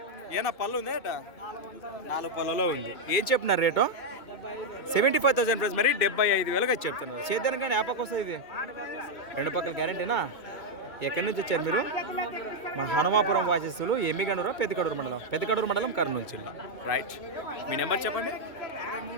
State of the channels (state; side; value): late; right; 2.2 ms